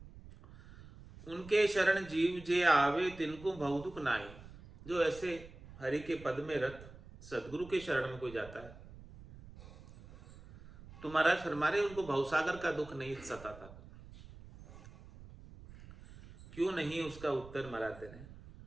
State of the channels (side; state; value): right; noise; rumble, 18 dB below the sound